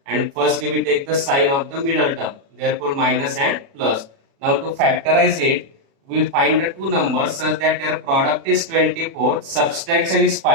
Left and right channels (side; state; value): left; late; 36 ms